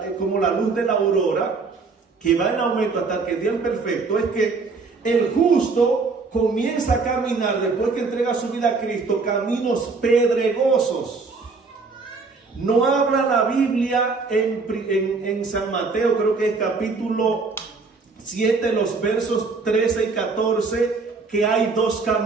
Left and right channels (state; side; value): quieter; left; 4.3 dB